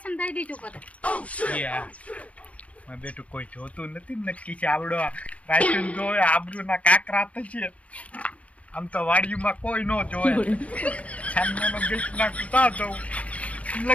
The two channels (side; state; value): right; late; 0.065 ms